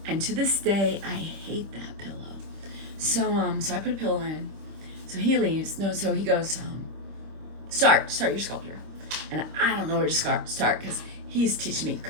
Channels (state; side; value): late; left; 26 ms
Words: and to this day I hate that pillow. So I put a pillow in. So he leaves. So he goes, start your sculpture. And I don't know where to start because he's teaching me